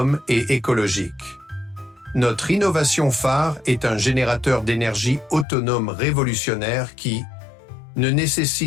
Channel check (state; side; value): drops out; right; at 5.5 s